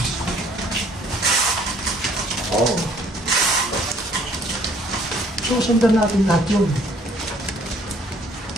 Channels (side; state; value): both; normal; correlation 0.59